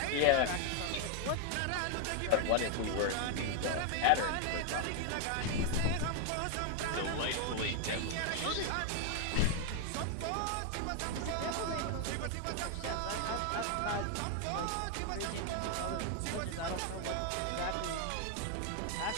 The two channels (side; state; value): both; different; correlation 0.00